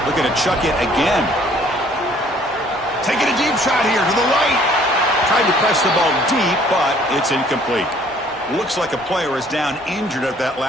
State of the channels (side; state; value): both; normal; correlation 0.58